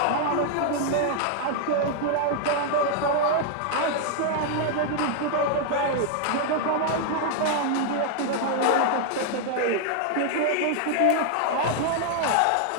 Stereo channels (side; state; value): both; different; correlation 0.00